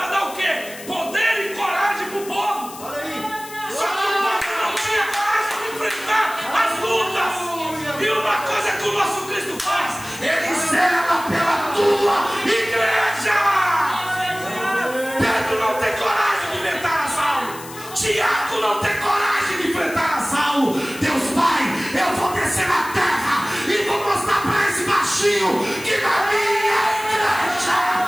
dar o quê? Poder e coragem para o povo. Só que o povo não tinha coragem de enfrentar as lutas. E uma coisa que o nosso Cristo faz: Ele zela pela tua igreja. Pedro não tem coragem de enfrentar a Saulo. Tiago não tem coragem de enfrentar a Saulo. Deus Pai, eu vou descer na terra e vou mostrar para esse baixinho que na minha igreja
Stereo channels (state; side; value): noise; left; hiss, 15 dB below the sound